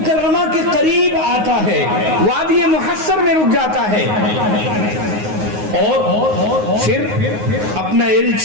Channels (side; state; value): left; late; 9.5 ms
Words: کے قریب آتا ہے، وادی محصر میں رک جاتا ہے، اور پھر اپنا